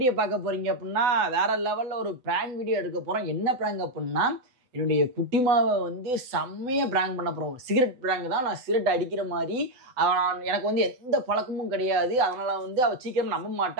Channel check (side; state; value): left; late; 8.0 ms